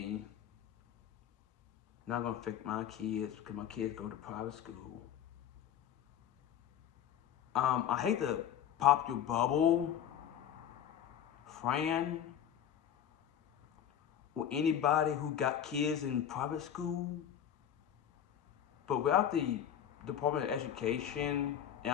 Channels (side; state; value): right; quieter; 9.7 dB